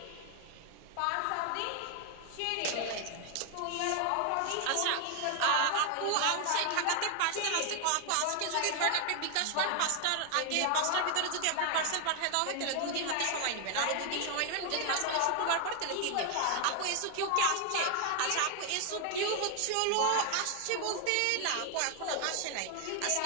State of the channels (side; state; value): both; different; correlation 0.00